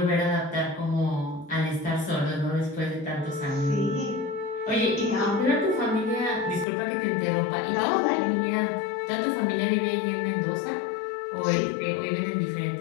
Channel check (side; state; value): right; drops out; at 6.7 s